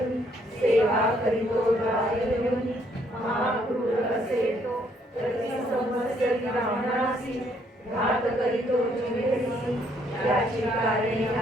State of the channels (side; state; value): both; normal; correlation 0.68